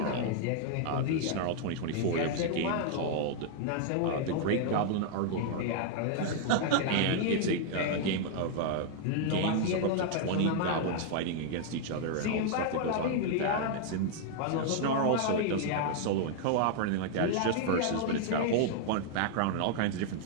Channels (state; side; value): different; both; correlation 0.00